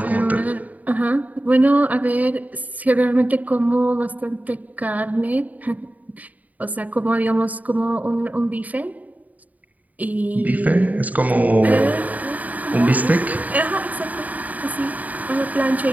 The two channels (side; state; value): left; late; 0.075 ms